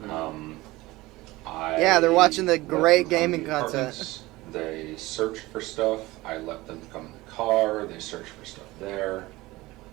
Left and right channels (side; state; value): left; quieter; 19.7 dB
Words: Yeah, they're watching the let great them come gaming to the content. apartments. They searched for stuff. I let them come in the car. They searched for stuff there.